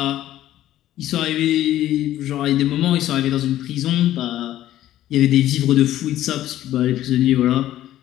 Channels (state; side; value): quieter; right; 13.3 dB